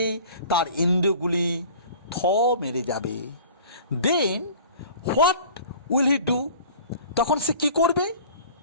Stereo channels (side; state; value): both; inverted; correlation -0.45